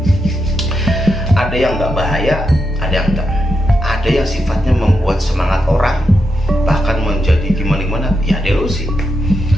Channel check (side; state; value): both; normal; correlation 0.85